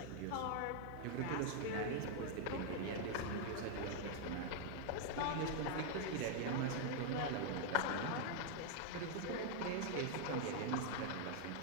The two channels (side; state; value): both; different; correlation 0.00